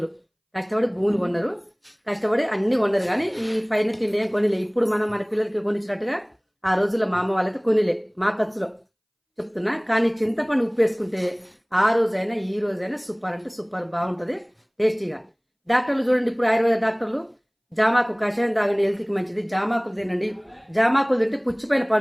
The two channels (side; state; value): both; identical; correlation 1.00